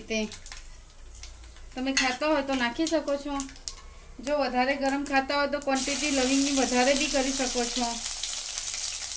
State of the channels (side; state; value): both; identical; correlation 1.00